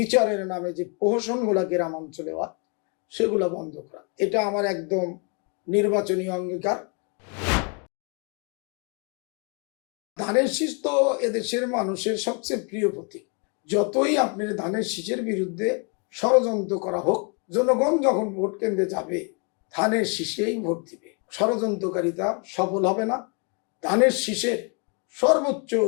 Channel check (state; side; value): quieter; right; 36.2 dB